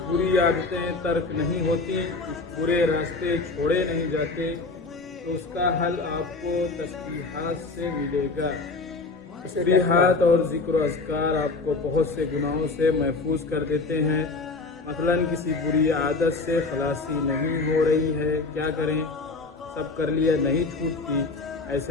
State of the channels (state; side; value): quieter; right; 3.8 dB